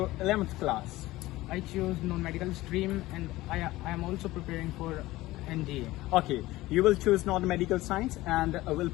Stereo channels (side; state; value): right; quieter; 17.9 dB